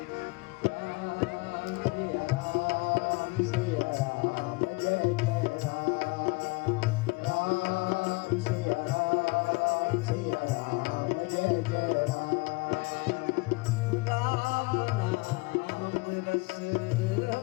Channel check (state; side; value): quieter; right; 25.8 dB